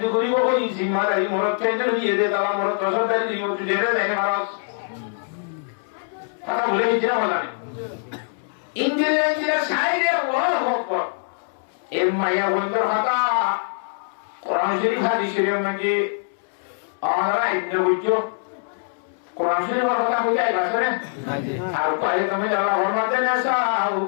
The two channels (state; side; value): silent; right; 63 dB below the other